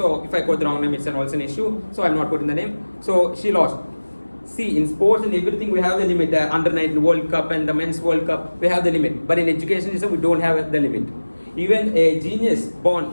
if I quote the wrong name, it's also an issue. So I'm not putting the name. So she lost. See, in sports and everything, we have the limit. The under-19 World Cup and the Men's World Cup, we have the limit. But in education system, we don't have the limit. Even a genius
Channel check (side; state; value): both; inverted; correlation -1.00